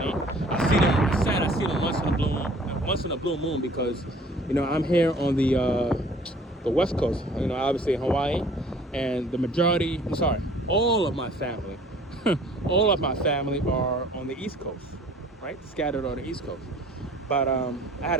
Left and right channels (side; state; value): both; normal; correlation 0.52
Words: I see them, it's sad, I see them once in a blue moon because, I'm here on the West Coast, obviously in Hawaii, and all of my family, are on the East Coast, right? Scattered on the East Coast. But I had